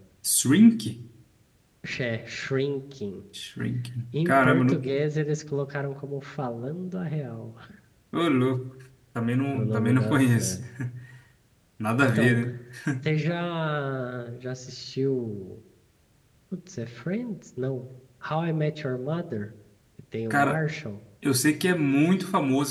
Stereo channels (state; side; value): identical; both; correlation 1.00